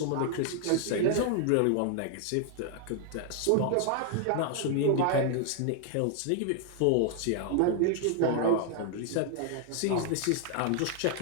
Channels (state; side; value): different; both; correlation 0.00